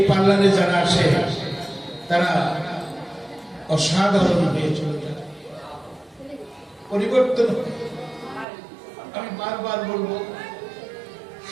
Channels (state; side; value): drops out; left; at 8.5 s